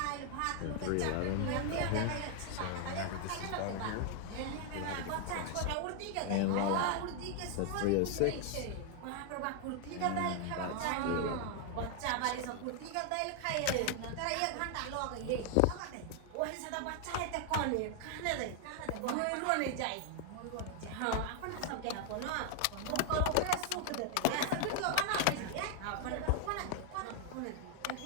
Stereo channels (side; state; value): both; different; correlation 0.00